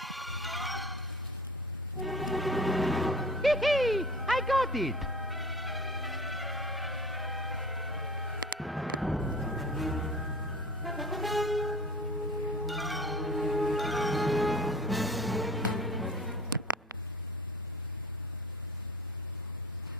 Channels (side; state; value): both; normal; correlation 0.42